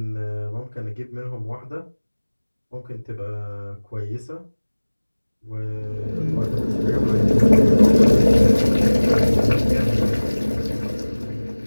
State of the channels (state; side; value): inverted; both; correlation -1.00